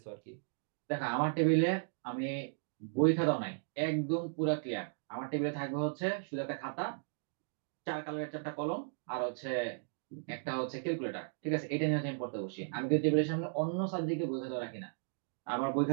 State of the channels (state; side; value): silent; left; digital silence